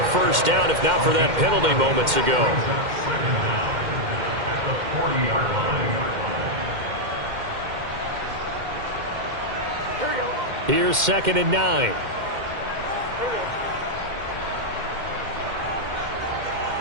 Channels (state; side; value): late; left; 2.1 ms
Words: first down if not for that penalty moments ago. Second down at the 40-yard line. Here's 2nd and 9.